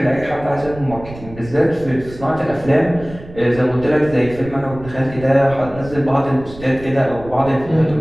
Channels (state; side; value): noise; right; rumble, 16 dB below the sound